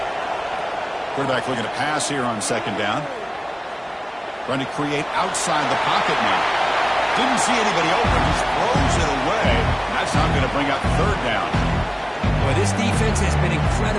Quarterback looking to pass here on second down. Trying to create outside the pocket now. Didn't see anybody open. Just throws it away. That's not going to bring up third down. Boy, this defense has been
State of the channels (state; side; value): identical; both; correlation 1.00